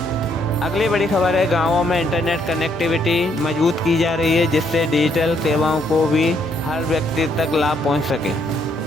अगली बड़ी खबर है, गांवों में इंटरनेट कनेक्टिविटी मजबूत की जा रही है, जिससे डिजिटल सेवाओं को भी हर व्यक्ति तक लाभ पहुंच सके।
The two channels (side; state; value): both; normal; correlation 0.71